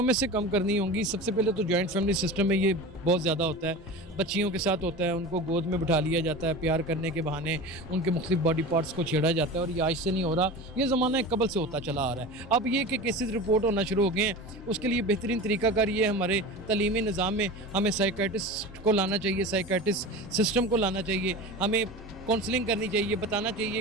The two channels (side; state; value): both; normal; correlation 0.31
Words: में से कम करनी होंगी। सबसे पहले तो जॉइंट फैमिली सिस्टम में ये बहुत ज़्यादा होता है, बच्चियों के साथ होता है, उनको गोद में बिठा लिया जाता है, प्यार करने के बहाने उनके मुख्तलिफ बॉडी पार्ट्स को छेड़ा जाता है। और ये आज से नहीं हो रहा, ये ज़माना कबल से होता चला आ रहा है। अब ये कि केसेस रिपोर्ट होना शुरू हो गए हैं, उसके लिए बेहतरीन तरीकाकार ये हमारे तलीमी निज़ाम में हमें साइकेट्रिस्ट को लाना चाहिए, साइकेट्रिस्ट सिस्टम को लाना चाहिए। हमें काउंसलिंग करनी चाहिए, बताना